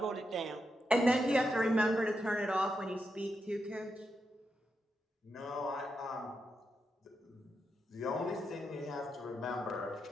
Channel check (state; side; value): normal; both; correlation 0.85